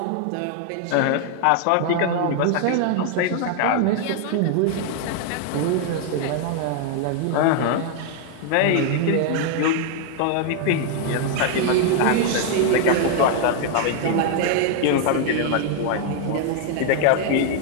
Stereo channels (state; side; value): different; both; correlation 0.00